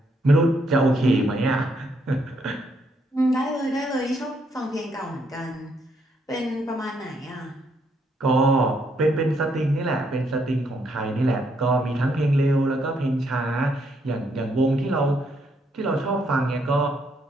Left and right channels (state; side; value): normal; both; correlation 0.74